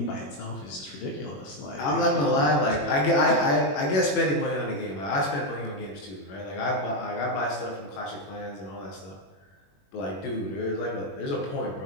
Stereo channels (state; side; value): late; right; 21 ms